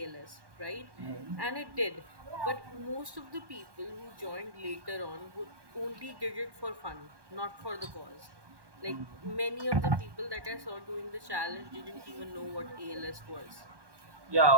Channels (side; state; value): left; late; 1.1 ms